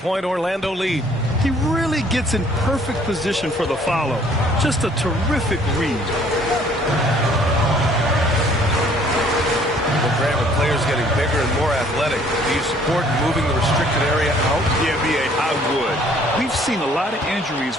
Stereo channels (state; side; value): normal; both; correlation 0.59